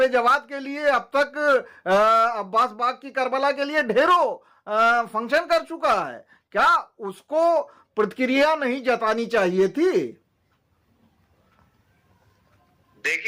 जवाद के लिए अब तक अब्बास बाग की करबला के लिए ढेरों फंक्शन कर चुका है। क्या उसको प्रतिक्रिया नहीं जतानी चाहिए थी?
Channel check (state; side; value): identical; both; correlation 1.00